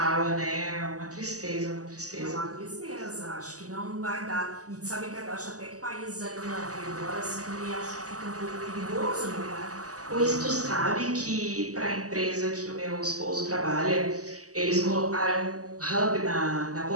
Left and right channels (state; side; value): late; left; 0.66 ms